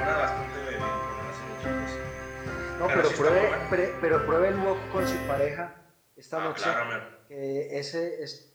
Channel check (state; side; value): identical; both; correlation 1.00